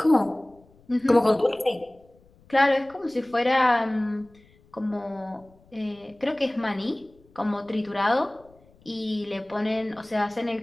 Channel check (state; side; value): noise; left; rumble, 29 dB below the sound